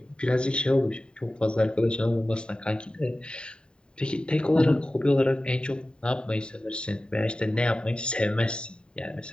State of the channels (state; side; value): late; right; 0.050 ms